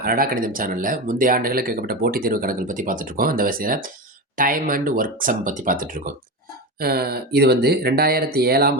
அரடா கணிதம் சேனல்ல முந்தைய ஆண்டுகளில் கேட்கப்பட்ட போட்டித் தேர்வு கணக்குகள் பத்தி பார்த்துட்டுருக்கோம். அந்த வரிசையில டைம் அண்ட் ஒர்க் சம் பத்தி பார்த்துட்டுருக்கோம். இது வந்து 2007ஆம்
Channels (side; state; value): both; normal; correlation 0.20